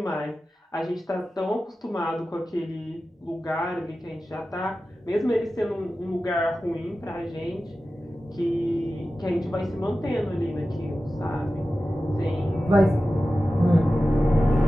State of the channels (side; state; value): both; normal; correlation 0.94